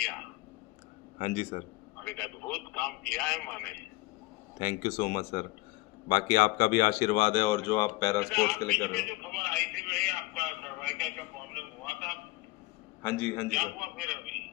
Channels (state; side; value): quieter; right; 21.0 dB